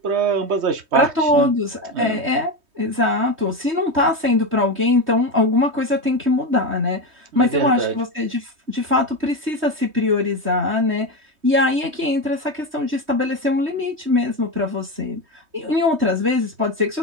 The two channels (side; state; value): left; late; 3.2 ms